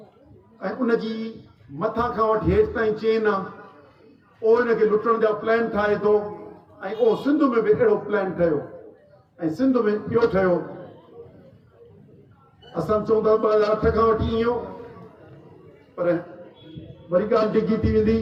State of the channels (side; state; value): both; identical; correlation 1.00